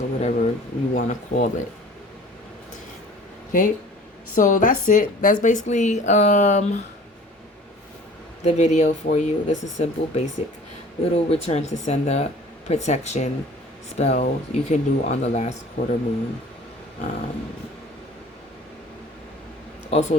whatever you want to call it. Okay, so that's it. That's basically the video for you. This is simple, basic little return to sender protection spell you can do on the last quarter moon. Also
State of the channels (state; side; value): normal; both; correlation 0.47